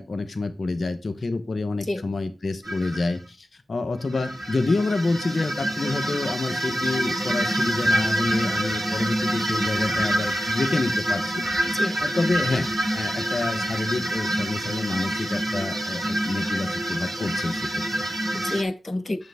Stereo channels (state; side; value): normal; both; correlation 0.92